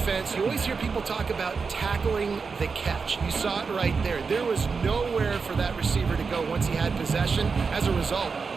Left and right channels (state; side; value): quieter; left; 5.1 dB